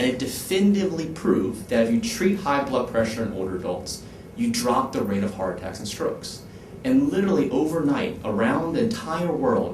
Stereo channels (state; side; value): identical; both; correlation 1.00